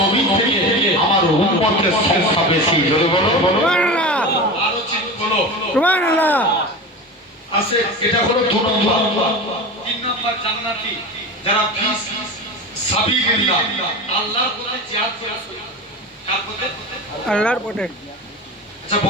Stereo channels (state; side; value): normal; both; correlation 0.28